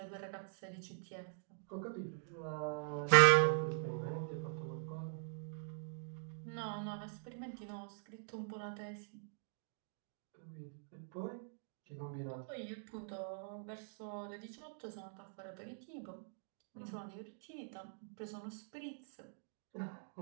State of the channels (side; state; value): left; silent; digital silence